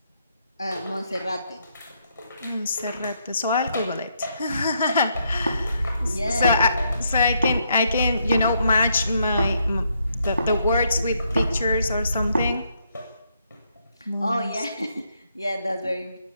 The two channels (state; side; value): inverted; both; correlation -0.76